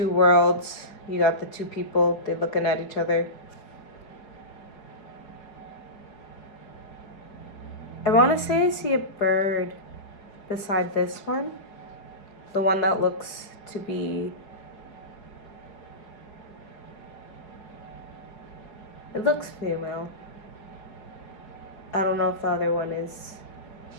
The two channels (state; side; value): late; right; 4.8 ms